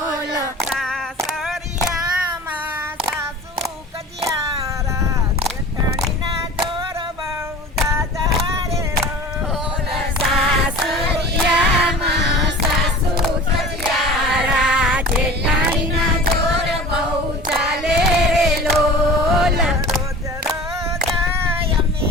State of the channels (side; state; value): both; normal; correlation 0.40